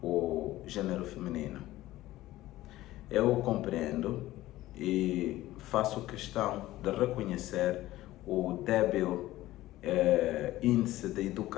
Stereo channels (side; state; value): right; quieter; 16.1 dB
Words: o gênero feminino. Eu compreendo e faço questão de reconhecer o débil índice de